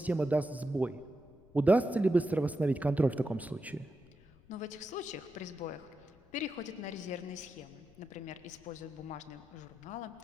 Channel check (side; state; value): left; noise; rumble, 27 dB below the sound